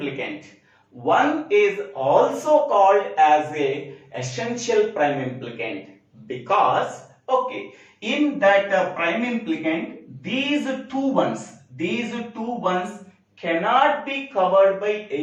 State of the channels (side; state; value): both; identical; correlation 1.00